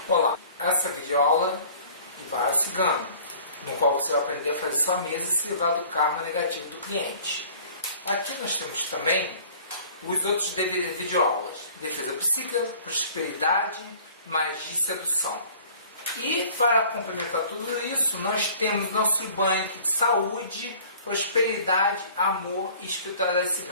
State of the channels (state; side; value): inverted; both; correlation -0.50